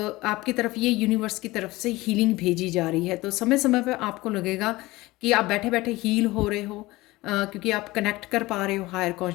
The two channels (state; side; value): quieter; right; 19.8 dB